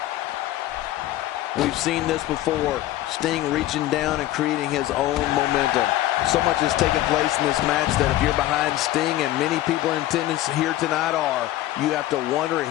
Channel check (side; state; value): right; quieter; 14.9 dB